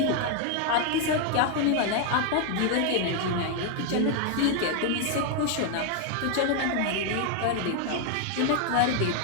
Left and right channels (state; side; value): different; both; correlation 0.00